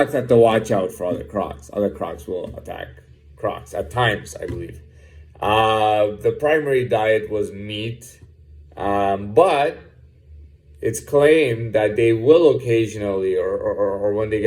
have to watch out for other crocs. Other crocs will attack crocs at times, I believe. The primary diet was meat, but it's claimed that they will occasionally, or when they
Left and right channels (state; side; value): identical; both; correlation 1.00